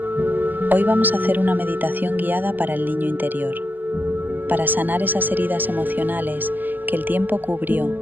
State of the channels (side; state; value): left; late; 0.088 ms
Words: Hoy vamos a hacer una meditación guiada para el niño interior, para sanar esas heridas emocionales que el tiempo